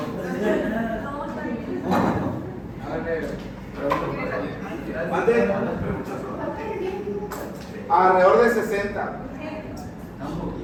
¿Mande? Alrededor de 60.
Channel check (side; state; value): both; identical; correlation 1.00